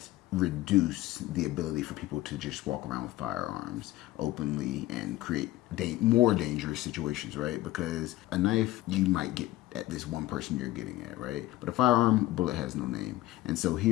reduce the ability for people to just walk around with firearms openly and create more dangerous situations, right? Because a knife, you might get at this one person you're getting at, right? But a firearm, a bullet has no name. And so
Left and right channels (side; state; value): right; quieter; 16.5 dB